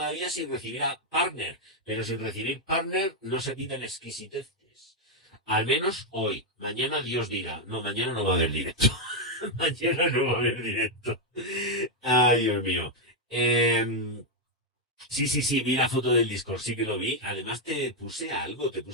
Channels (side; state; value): both; normal; correlation 0.01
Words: sin recibir a partner, pero sin recibir partner no se pidan exquisiteces. Al menos hoy. Mañana Dios dirá. No, mañana no va a haber directo. Mañana no va a haber directo. Ay, Dios mío. Eh, sí, sí, sí, vi la foto del Discord, sí que lo vi. Además te puse algo, te